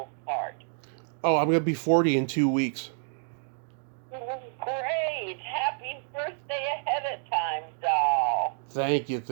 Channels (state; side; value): silent; left; digital silence